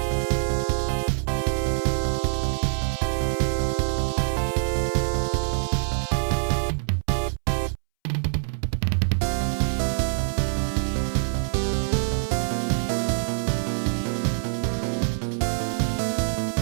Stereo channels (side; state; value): left; silent; 62 dB below the other